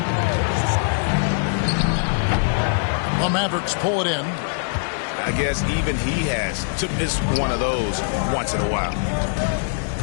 The Mavericks pull it in. I guess even he has to miss one of those once in a while.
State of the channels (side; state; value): right; silent; 61 dB below the other